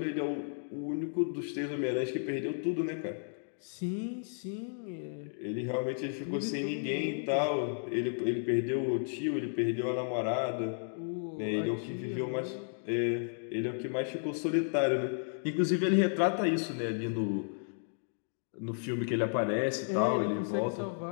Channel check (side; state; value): right; silent; digital silence